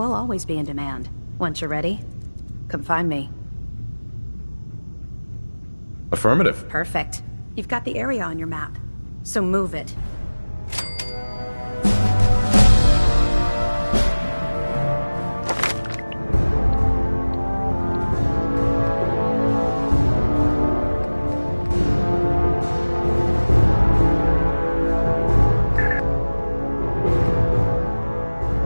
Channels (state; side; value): inverted; both; correlation -1.00